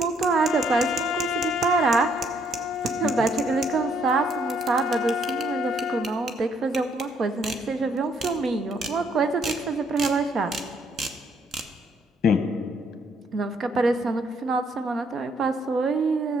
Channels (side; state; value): both; normal; correlation 0.69